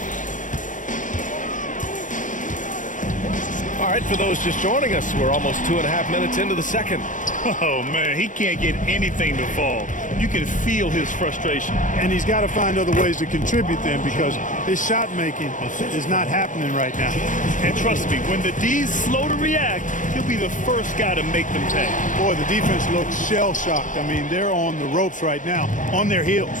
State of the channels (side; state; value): right; late; 0.37 ms